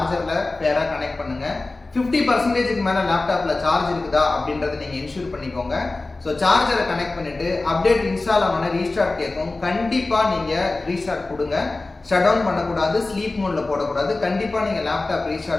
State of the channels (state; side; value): quieter; right; 3.2 dB